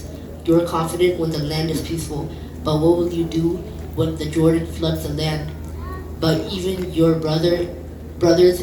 You are confident when the land is peaceful, but what will you do when the Jordan floods the land? But even your brothers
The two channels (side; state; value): both; identical; correlation 1.00